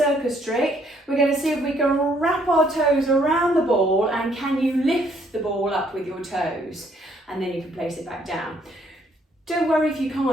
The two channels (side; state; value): both; normal; correlation 0.67